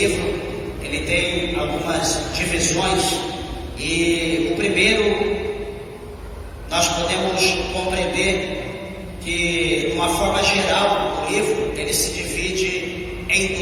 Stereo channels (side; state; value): both; identical; correlation 1.00